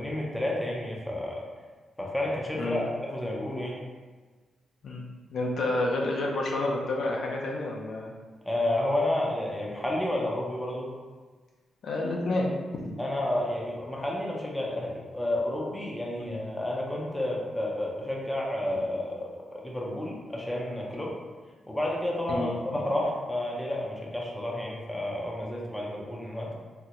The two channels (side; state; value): both; normal; correlation 0.87